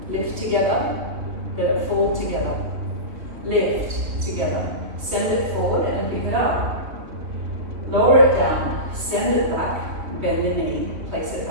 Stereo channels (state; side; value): late; left; 3.0 ms